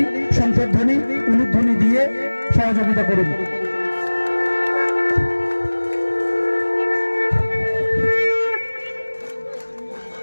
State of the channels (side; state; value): both; inverted; correlation -1.00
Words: শঙ্খধ্বনি, উলুধ্বনি দিয়ে সহযোগিতা করুন।